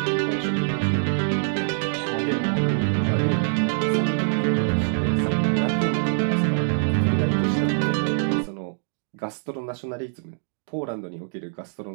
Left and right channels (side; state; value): left; silent; digital silence